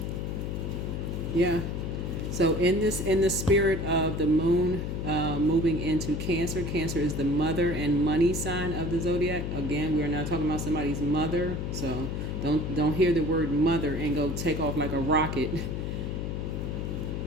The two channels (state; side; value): noise; left; hum, 3 dB below the sound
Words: yeah. So in the spirit of the moon moving into Cancer, Cancer is the mother and money sign of the zodiac. Again, we're not talking about somebody's mother, so don't hear the word mother and go take off like a rocket.